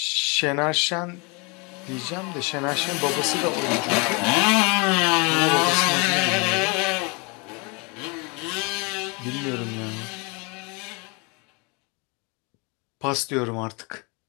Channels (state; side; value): quieter; right; 30.5 dB